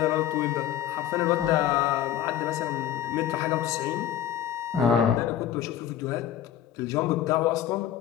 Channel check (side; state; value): right; quieter; 10.8 dB